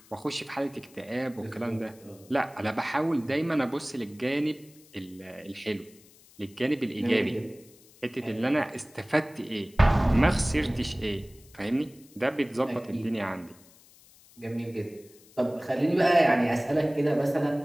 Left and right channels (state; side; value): noise; left; hiss, 26 dB below the sound